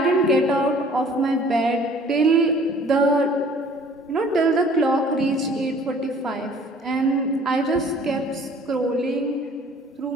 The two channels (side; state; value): both; normal; correlation 0.53